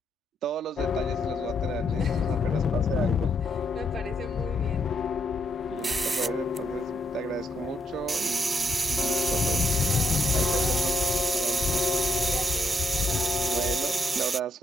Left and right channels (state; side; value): normal; both; correlation 0.77